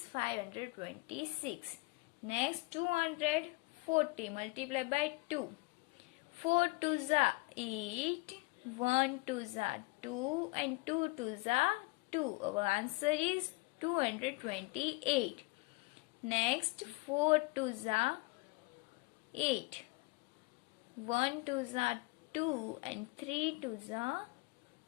526. Next 240 multiplied by 2. 4 2s are 8. 1 2s are 2 and 2 2s are 2. Our answer is 228. Next 4 2s are 8. 1 2s are 2 and 3 2s are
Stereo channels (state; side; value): quieter; right; 24.7 dB